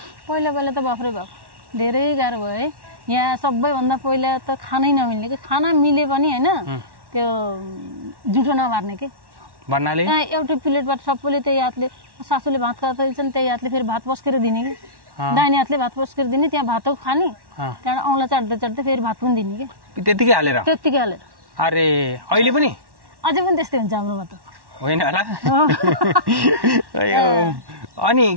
पहिला त बाफ्रै बाफ धेरै गाह्रो भयो है। यहाँ सबैभन्दा पहिला त खानै नमिल्ने कि, खाना मिले पनि होइन त्यो जुठो नमार्ने के भन्नाले यहाँ एउटै प्लेटबाट सबैले त्यही हातले, सासूले भात खाँदैछन् त्यही हातले फेरि भात पस्केर दिने कि, दाहिने हातले भात पस्केर दिने, त्यहाँ भात खाने, त्यहाँबाट औँला चाट्दै फेरि भात पनि दिने कि, त्यतिकै हालेर। अरे अहिले पनि अझै पनि त्यस्तै हुन्छ हाम्रोमा त, होइन होला? अनि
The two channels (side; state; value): left; late; 1.1 ms